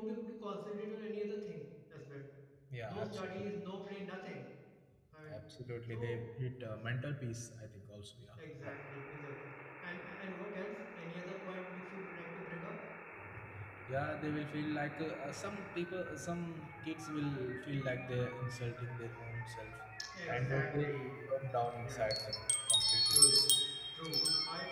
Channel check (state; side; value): identical; both; correlation 1.00